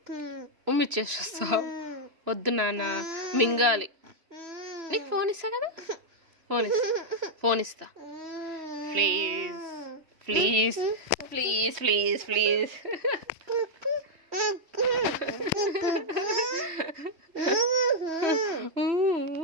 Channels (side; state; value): left; late; 3.1 ms